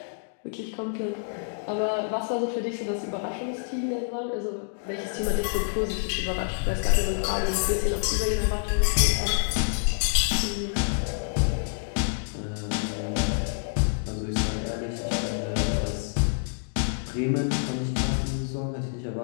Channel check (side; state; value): right; silent; digital silence